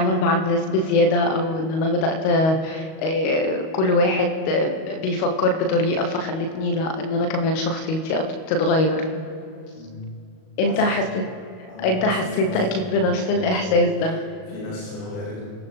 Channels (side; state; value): right; late; 38 ms